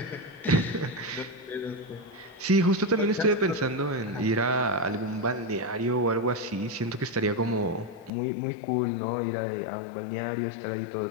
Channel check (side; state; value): right; drops out; at 8.1 s